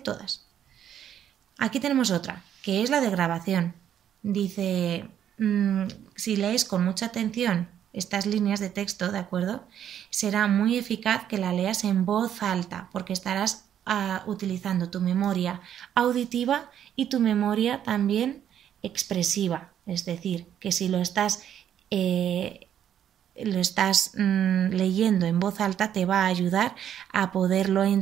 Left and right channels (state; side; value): quieter; left; 9.9 dB